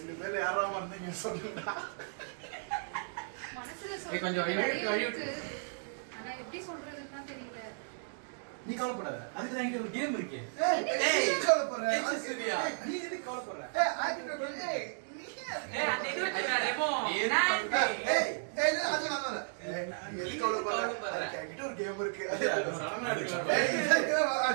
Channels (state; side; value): silent; left; digital silence